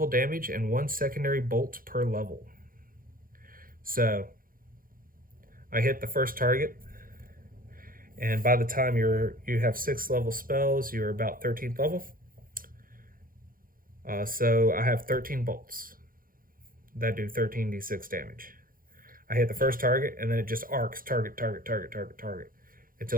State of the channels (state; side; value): late; left; 0.41 ms